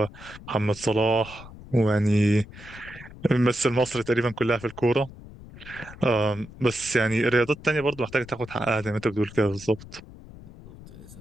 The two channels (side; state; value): left; noise; rumble, 17 dB below the sound